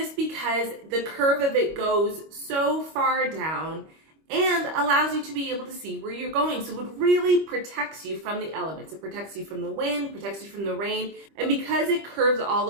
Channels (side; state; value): left; late; 25 ms